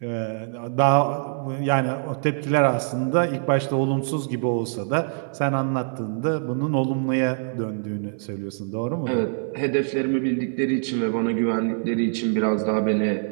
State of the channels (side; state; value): left; silent; 58 dB below the other